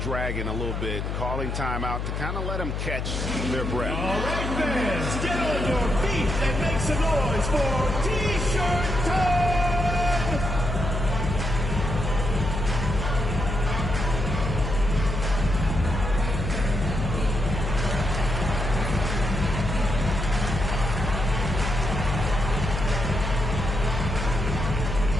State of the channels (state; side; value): noise; left; hum, 3 dB below the sound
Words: a little bit, calling timeout to kind of let them catch their breath. All right, fans, get on your feet and make some noise for T-shirt time!